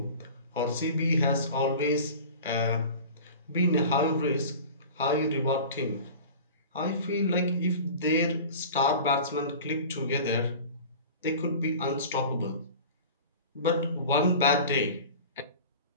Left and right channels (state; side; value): inverted; both; correlation -0.38